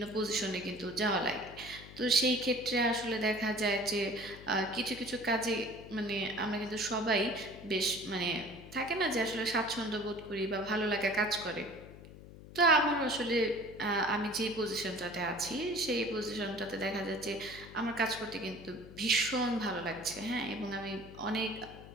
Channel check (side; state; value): left; noise; hum, 16 dB below the sound